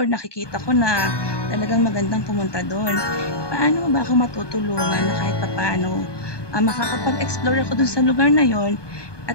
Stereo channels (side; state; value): right; late; 1.2 ms